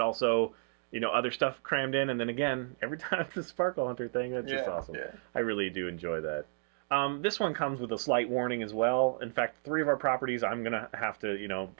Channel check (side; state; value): left; silent; digital silence